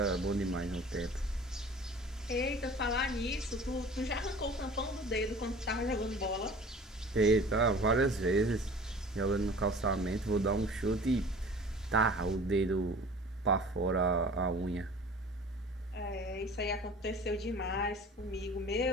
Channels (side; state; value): both; normal; correlation 0.44